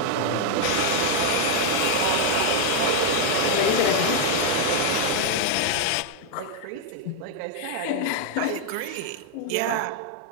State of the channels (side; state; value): both; different; correlation 0.00